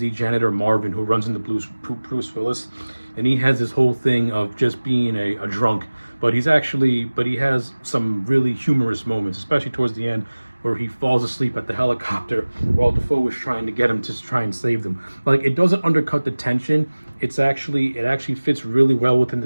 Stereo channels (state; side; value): inverted; both; correlation -1.00